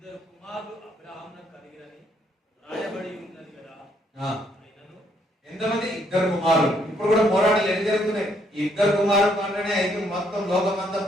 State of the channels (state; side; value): normal; both; correlation 0.70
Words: కుమారులు అబ్రాహామునకు కలిగిరని రాయబడి ఉన్నది కదా. అయినను ఎంతమంది? ఇద్దరు కుమారులు. ఇప్పుడు కూడా పోరాటాలు ఎన్ని జరుగుతున్నాయి? ఇద్దరు కుమారులు అంటేనే అయితే మొత్తం లోకమంతా